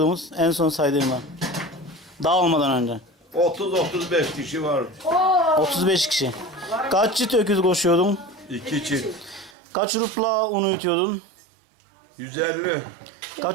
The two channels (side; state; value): left; drops out; at 9.6 s